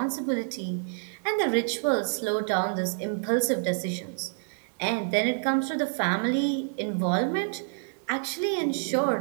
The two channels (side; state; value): left; silent; digital silence